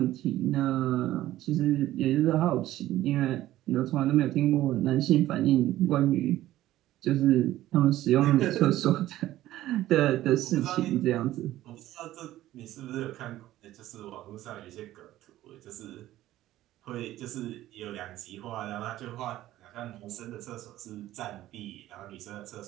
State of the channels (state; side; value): quieter; left; 14.6 dB